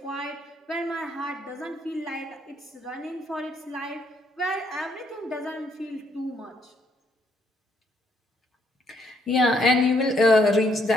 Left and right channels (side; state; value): both; normal; correlation 0.71